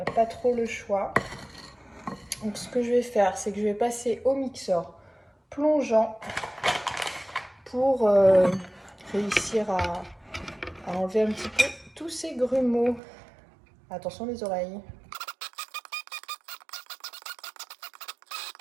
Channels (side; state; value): left; drops out; at 13.0 s